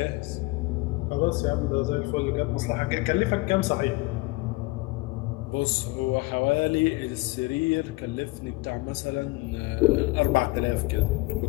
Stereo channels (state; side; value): quieter; right; 22.7 dB